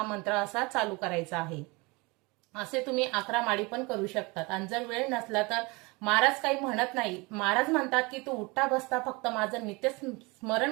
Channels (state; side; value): quieter; left; 26.2 dB